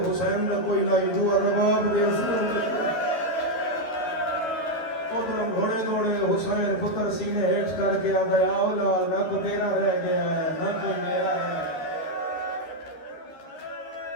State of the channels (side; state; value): right; late; 13 ms